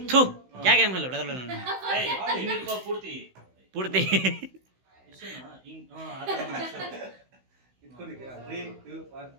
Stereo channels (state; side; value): late; left; 16 ms